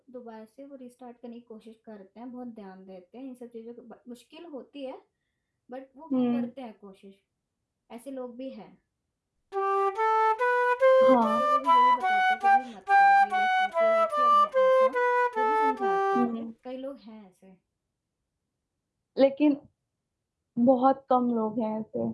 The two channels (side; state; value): both; identical; correlation 1.00